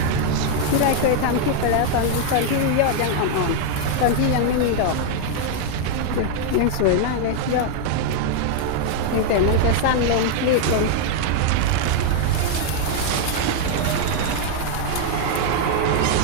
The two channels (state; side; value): different; both; correlation 0.00